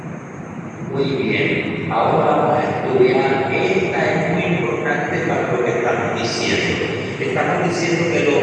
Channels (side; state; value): both; identical; correlation 1.00